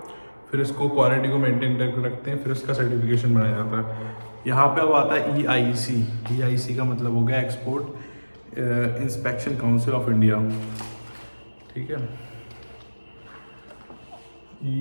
फिर इसको क्वालिटी को मेंटेन करके रखते हैं, फिर उसका सर्टिफिकेशन बनाया जाता है। यहाँ पे अब आता है EIC। EIC का मतलब हो गया export inspection council of India, ठीक है।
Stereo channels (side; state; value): both; inverted; correlation -1.00